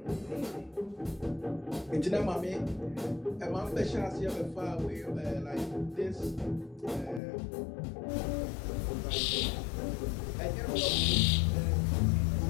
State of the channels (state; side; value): drops out; right; at 7.2 s